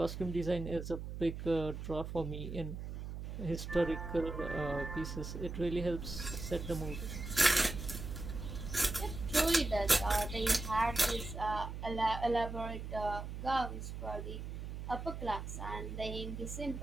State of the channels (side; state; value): right; noise; hum, 7 dB below the sound